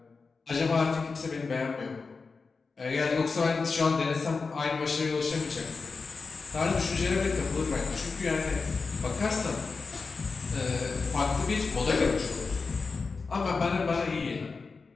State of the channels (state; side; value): quieter; right; 4.5 dB